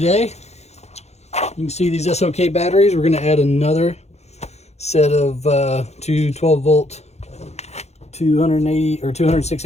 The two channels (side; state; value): right; late; 0.31 ms